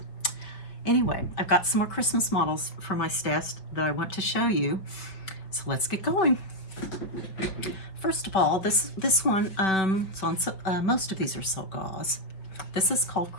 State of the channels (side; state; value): right; late; 5.2 ms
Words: Anyway, I've got some more Christmas models for my stash that I want to show you, so let's get going. First of all, this one, most of these are silk gauze. This is called